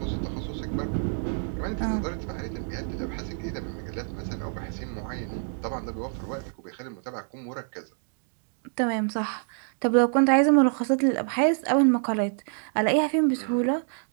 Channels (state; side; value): silent; left; 60 dB below the other